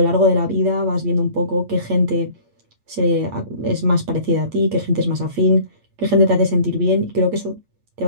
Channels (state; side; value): late; left; 8.6 ms